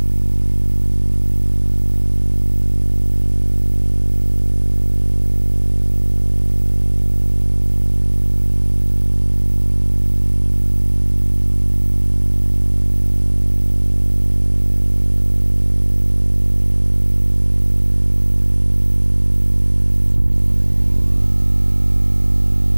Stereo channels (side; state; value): both; inverted; correlation -1.00